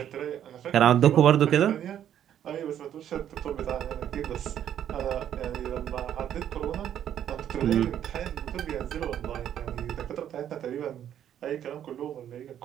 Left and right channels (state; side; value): quieter; left; 10.2 dB